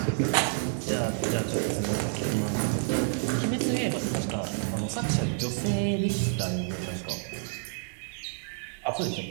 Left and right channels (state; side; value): silent; left; digital silence